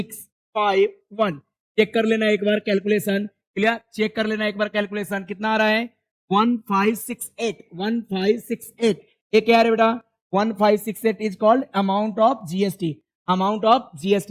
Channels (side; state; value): both; identical; correlation 1.00